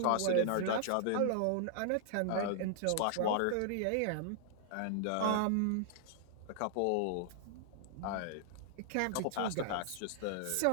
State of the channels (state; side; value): different; both; correlation -0.01